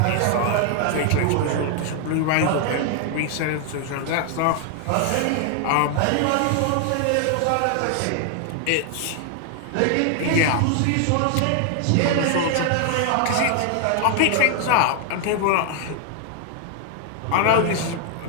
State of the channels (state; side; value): different; both; correlation 0.00